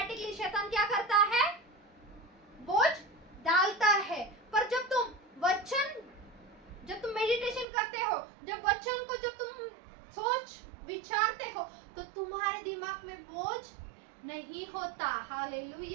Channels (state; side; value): drops out; left; at 7.7 s